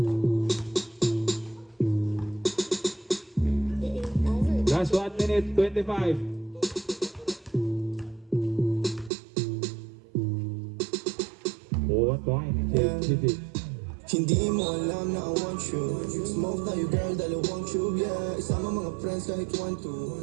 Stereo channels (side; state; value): left; drops out; at 9.1 s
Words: Last 1 minute, 25. Oh, 1 point. JJ. Hindi mo alam na I want you. Smoke tayo girl, dalawang tube, yeah. Isama mga friends kahit 1-2.